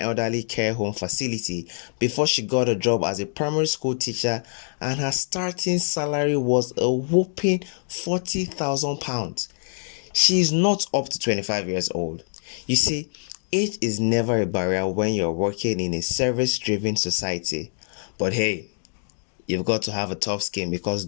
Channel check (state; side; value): silent; right; digital silence